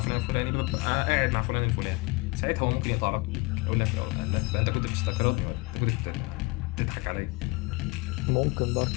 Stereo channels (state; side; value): quieter; right; 25.7 dB